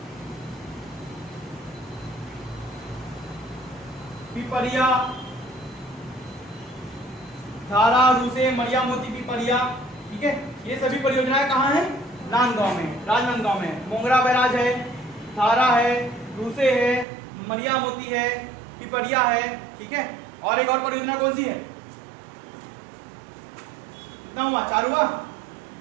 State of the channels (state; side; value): drops out; left; at 17.1 s